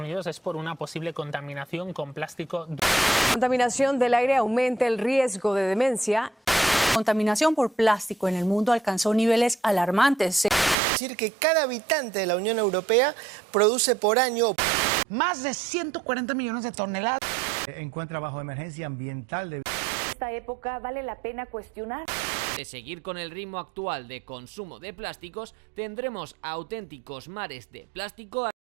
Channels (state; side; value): drops out; left; at 10.8 s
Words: Es por una posible contaminación con plástico. La contaminación del aire aumenta el riesgo de demencia. La contaminación por plástico en el mundo alcanzó niveles alarmantes. Es decir, que cada habitante de la Unión Europea produce por año más de 140 millones de toneladas. Encuentra bajo emergencia ambiental de esta época vale la pena cuestionar. De seguir con el ritmo actual de consumo de plásticos, tendremos auténticos mares de plástico.